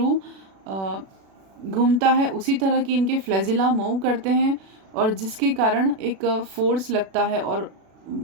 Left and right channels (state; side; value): late; left; 36 ms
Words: घूमता है उसी तरह की इनके फ्लैजिला मूव करते हैं और जिसके कारण एक फोर्स लगता है और